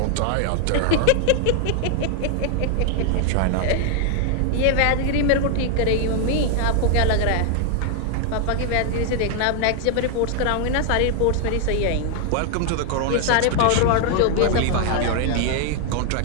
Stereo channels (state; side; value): different; both; correlation 0.00